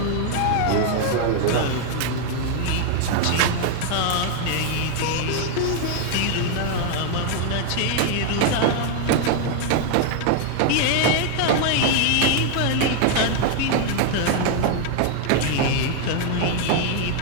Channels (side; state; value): both; different; correlation 0.00